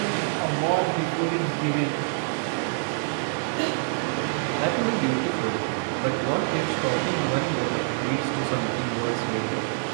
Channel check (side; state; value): left; silent; digital silence